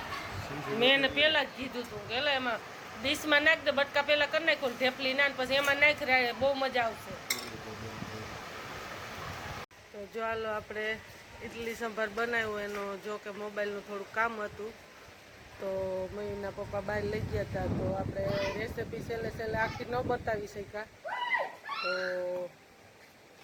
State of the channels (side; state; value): both; identical; correlation 1.00